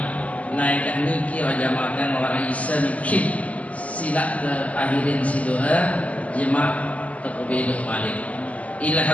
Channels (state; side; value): late; right; 0.070 ms